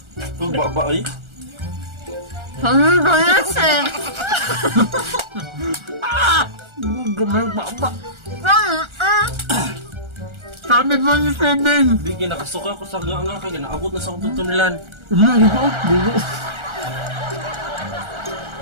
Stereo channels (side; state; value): left; late; 1.4 ms